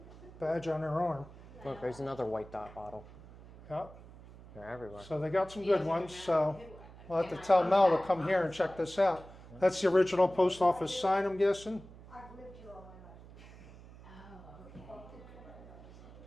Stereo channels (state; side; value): noise; right; hum, 19 dB below the sound